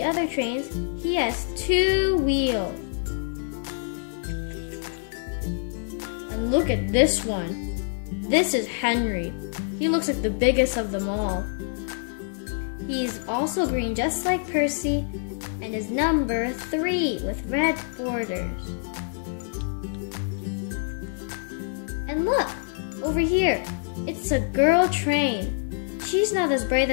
other trains, he has 2 wheels. And look at this one. This is Henry. He looks like the biggest of them all. He's also green just like Percy and is number 3 with red borders. And look, over here, it's a girl train. She's not as bright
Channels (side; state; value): right; silent; digital silence